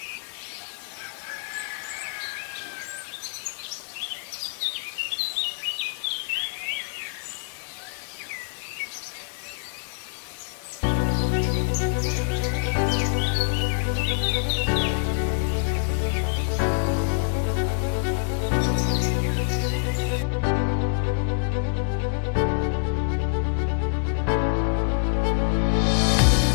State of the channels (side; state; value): right; silent; digital silence